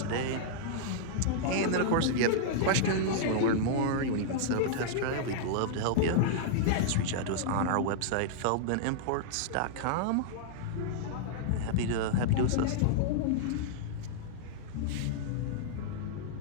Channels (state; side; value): different; both; correlation -0.02